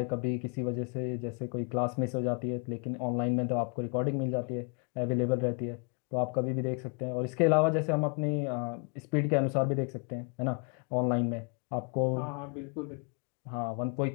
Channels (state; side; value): quieter; right; 38.0 dB